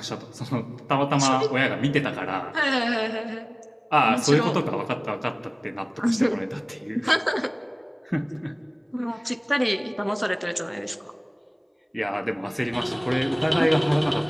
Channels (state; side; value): identical; both; correlation 1.00